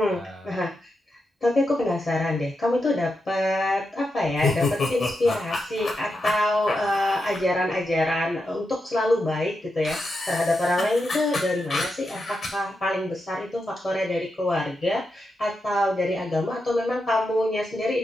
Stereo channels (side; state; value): both; normal; correlation 0.87